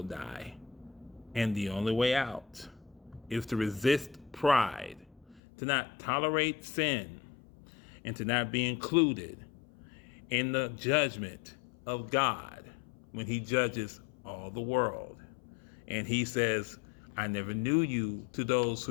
die. And the only way out is to resist pride, to not tolerate sin, and to not be included in the judgment of God when he judges all the world. And he says, I never knew you, to those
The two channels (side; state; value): right; drops out; at 5.4 s